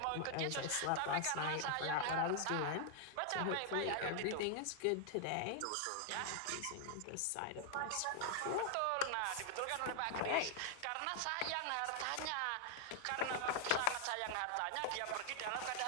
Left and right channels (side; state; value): both; different; correlation 0.00